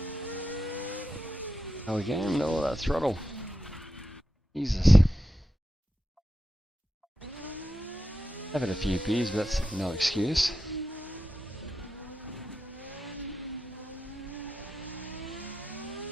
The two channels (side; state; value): both; normal; correlation 0.89